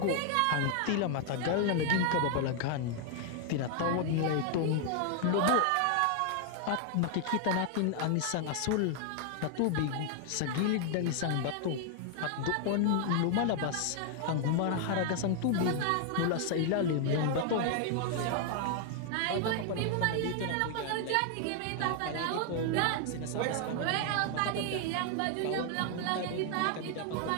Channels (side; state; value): both; different; correlation 0.00